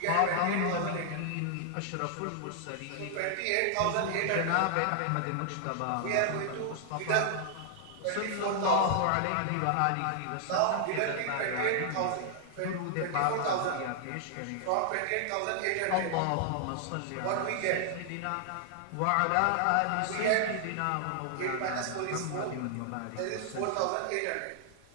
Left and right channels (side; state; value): both; different; correlation -0.01